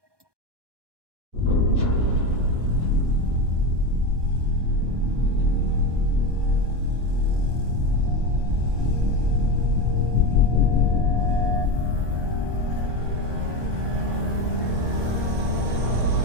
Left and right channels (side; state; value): left; late; 1.2 ms